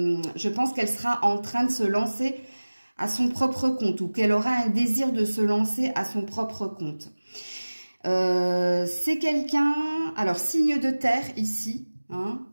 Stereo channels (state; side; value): inverted; both; correlation -1.00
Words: pense qu'elle sera en train de se lancer à son propre compte ou qu'elle aura un désir de se lancer à son propre compte. C'est quelqu'un, alors signe de terre ici, hein,